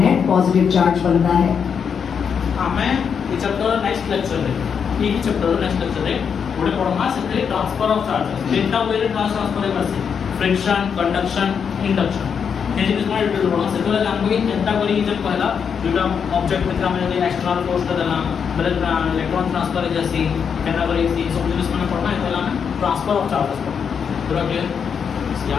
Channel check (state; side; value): quieter; right; 6.9 dB